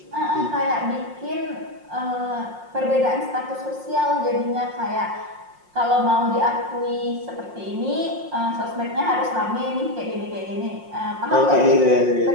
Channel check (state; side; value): late; left; 5.6 ms